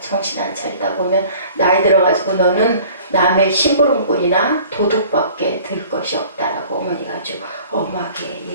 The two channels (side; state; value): both; inverted; correlation -0.48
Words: 안 차리다 보면 나이 들어가지고 너는 남의 심부름꾼이나 도둑밖에 될 것이 없다라고 어머니가 아주 엄하게